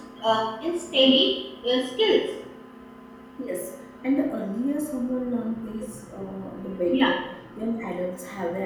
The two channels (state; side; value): identical; both; correlation 1.00